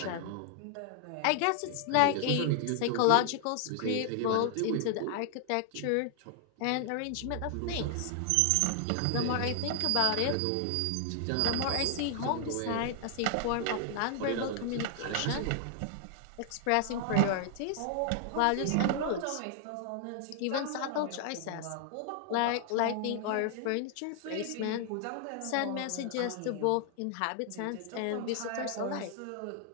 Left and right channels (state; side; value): different; both; correlation 0.00